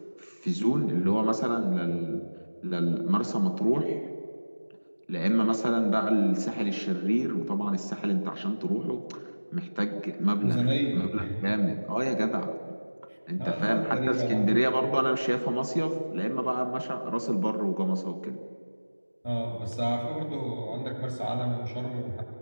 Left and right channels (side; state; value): both; inverted; correlation -1.00